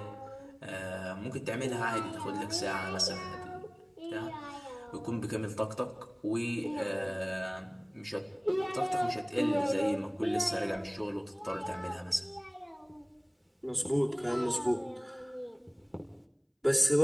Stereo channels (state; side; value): identical; both; correlation 1.00